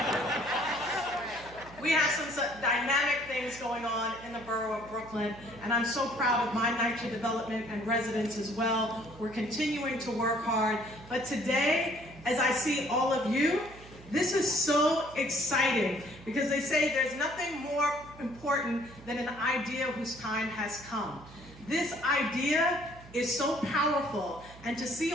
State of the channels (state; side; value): noise; right; hum, 19 dB below the sound